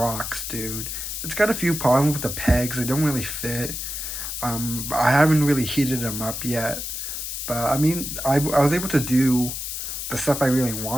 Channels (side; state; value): left; noise; hiss, 5 dB below the sound